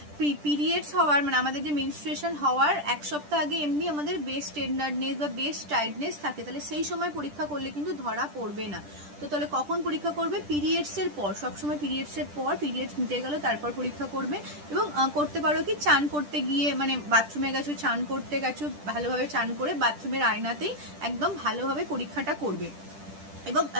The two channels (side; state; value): left; late; 10 ms